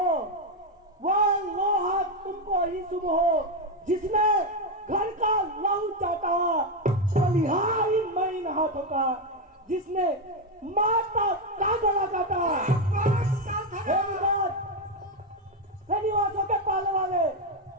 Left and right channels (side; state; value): both; normal; correlation 0.07